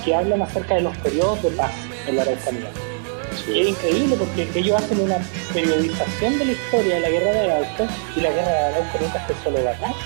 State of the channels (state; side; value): silent; left; 58 dB below the other